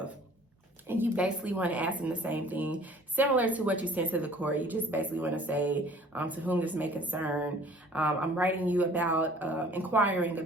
And you basically want to ask them the same thing, similar to what you sent to the court. You just basically want to say, to whom this may concern, I'm writing you about inquiring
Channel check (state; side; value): normal; both; correlation 0.51